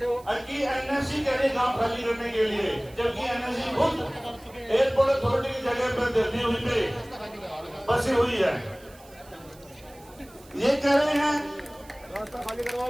कि एनएससी कह रहे गाँव खाली करने के लिए, जबकि एनएससी खुद एयरपोर्ट अथॉरिटी की जगह पर दिल्ली हुई पे बसी हुई है। ये कह रहे हैं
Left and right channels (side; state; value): right; noise; hiss, 25 dB below the sound